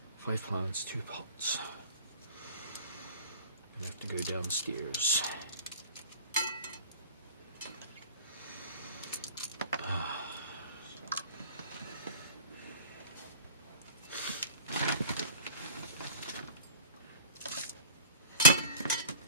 5 plants, 2 pots. I have to go downstairs.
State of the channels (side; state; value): both; inverted; correlation -0.41